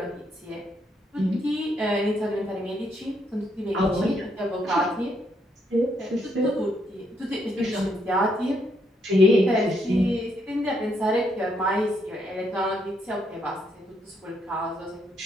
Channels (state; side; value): normal; both; correlation 0.75